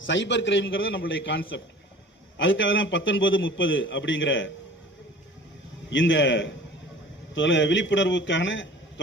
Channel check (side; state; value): both; normal; correlation 0.44